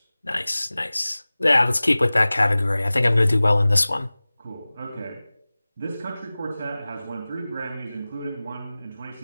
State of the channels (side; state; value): both; inverted; correlation -0.98